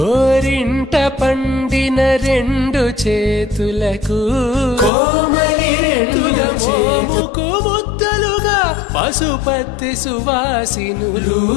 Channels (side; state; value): right; drops out; at 4.9 s